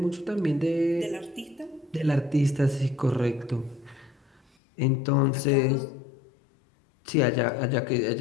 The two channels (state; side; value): drops out; right; at 4.4 s